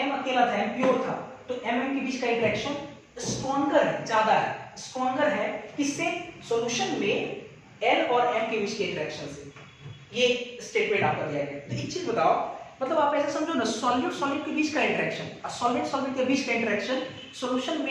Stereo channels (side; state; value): both; identical; correlation 1.00